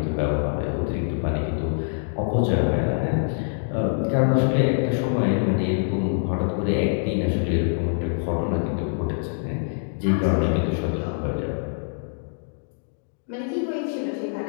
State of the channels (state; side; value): silent; right; digital silence